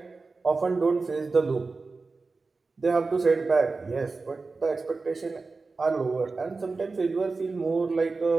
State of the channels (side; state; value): left; quieter; 4.0 dB